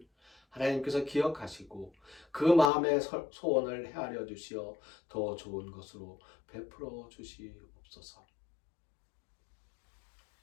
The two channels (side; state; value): right; drops out; at 2.7 s